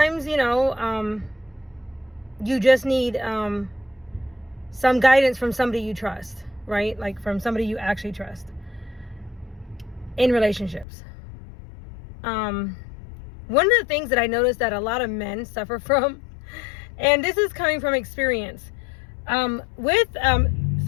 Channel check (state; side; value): drops out; right; at 10.9 s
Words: you just need some guidance from somebody you trust, right? Like from somebody you actually trust in relationships. One of the things that I noticed that a lot of men suffer from, and this is coming from experience, with